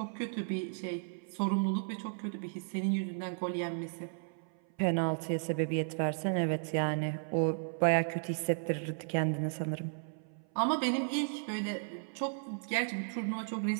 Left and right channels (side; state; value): left; silent; 55 dB below the other